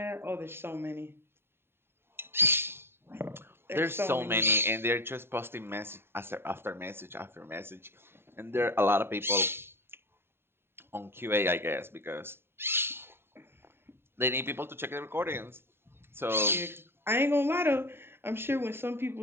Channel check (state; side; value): late; left; 0.11 ms